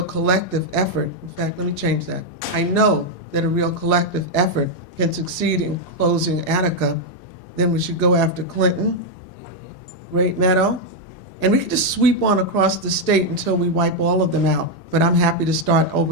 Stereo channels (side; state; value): both; normal; correlation 0.00